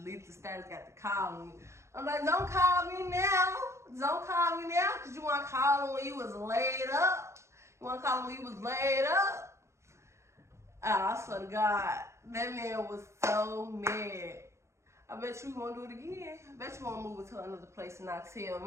the status, got to call me. I'm like, don't call me now. Don't call me now, because you want to call him when you was laid up. You want to call him when he was laid up? I swear to God, that man was so mad. I bet you won't do it again. I bet you won't move it to another place and not tell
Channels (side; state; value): left; late; 0.14 ms